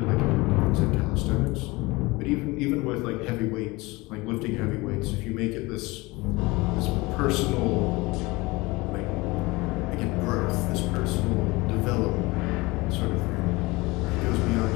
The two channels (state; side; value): quieter; right; 22.8 dB